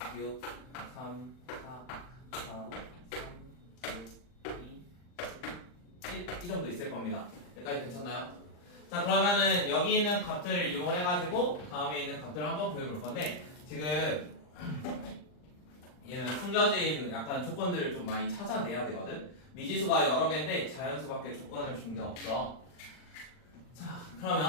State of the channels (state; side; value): late; right; 40 ms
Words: 6, 3, 4, 4, 3, 2, 1 이 정도 있을 겁니다. 여기까지 괜찮나요? 자 그러면은 여기 있는 값들을 이용을 해가지고 다음에 있는 값들을 한번 구해볼 건데 지금 얘는 숨겨진 약간 조건들을 좀 많이 찾아내야 되거든. 미지수가 여러 개인데 자연수밖에 조건을 준 게 없어. 자